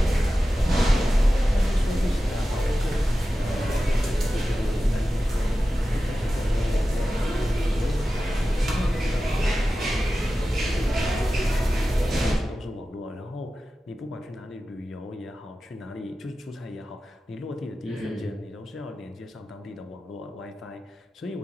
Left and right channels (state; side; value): normal; both; correlation 0.94